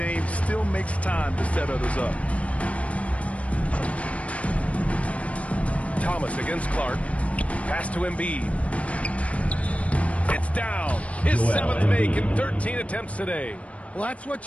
still makes time to set others up. Thomas against Clark. Pass to Embiid. It's down. His 7th make in 13 attempts today. Well, that's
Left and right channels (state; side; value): late; right; 0.064 ms